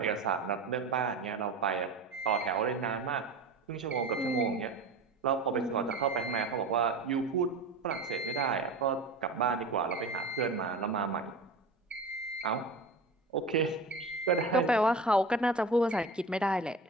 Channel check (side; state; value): left; quieter; 3.2 dB